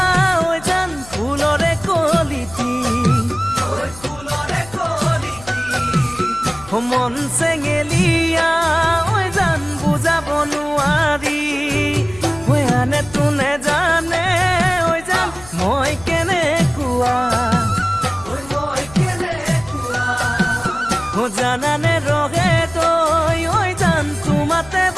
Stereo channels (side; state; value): left; noise; hum, 19 dB below the sound